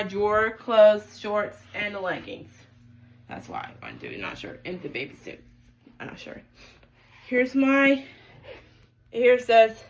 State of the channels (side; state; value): both; identical; correlation 1.00